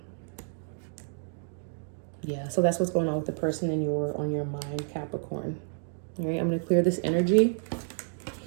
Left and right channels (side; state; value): left; silent; digital silence